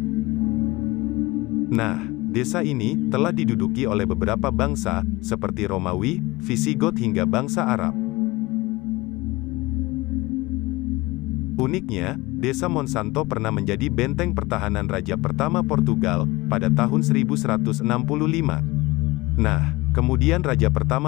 Nah, desa ini telah diduduki oleh beberapa bangsa, seperti Romawi, Visigoth hingga bangsa Arab. Uniknya, desa Monsanto pernah menjadi benteng pertahanan raja pertama Portugal, pada tahun 1165. Nah, kemudian raja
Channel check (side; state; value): right; quieter; 21.3 dB